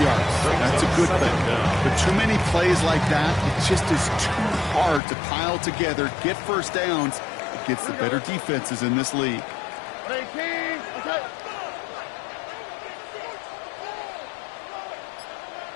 yards. That's a good thing. But too many plays like that, it just is too hard to pile together, get first downs against the better defenses in this league. 18, okay.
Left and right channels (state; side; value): drops out; right; at 5.0 s